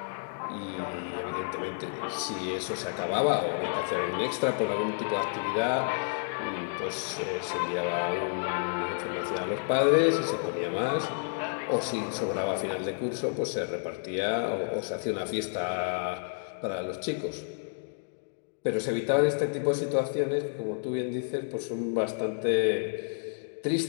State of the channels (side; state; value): right; silent; digital silence